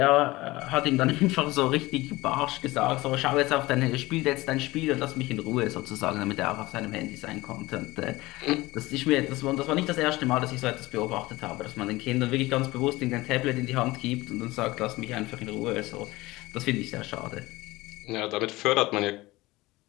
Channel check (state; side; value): quieter; right; 20.0 dB